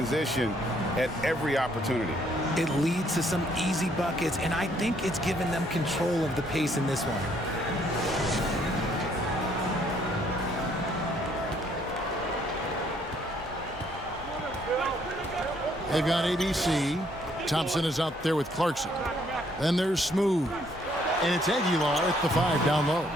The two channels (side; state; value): both; normal; correlation 0.67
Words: at every opportunity. It leads to some easy buckets, and I think it's given them control of the pace in this one. They've got ABC. Thompson is out there with Clarkson. Then there's Smooth. And it's Aguilar at the 5 down low.